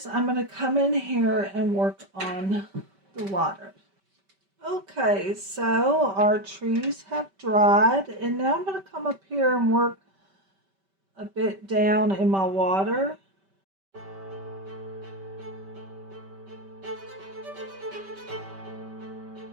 I'm going to come in here and work on the water. Okay, so our trees have dried, and now I'm going to come up here and work a bit down in my water.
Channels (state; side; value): late; left; 5.2 ms